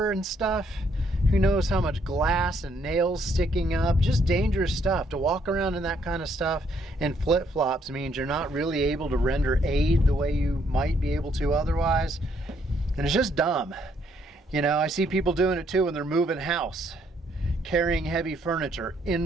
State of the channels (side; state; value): both; normal; correlation 0.70